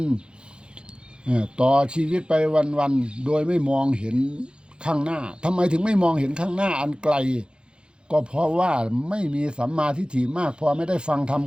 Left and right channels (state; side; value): late; left; 0.052 ms